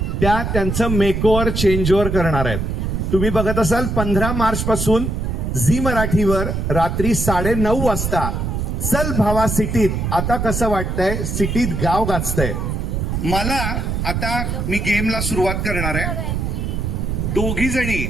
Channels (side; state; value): right; noise; rumble, 2 dB below the sound